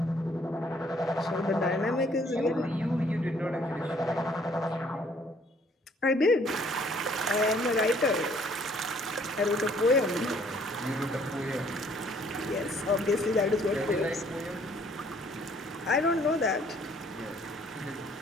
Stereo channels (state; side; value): normal; both; correlation 0.61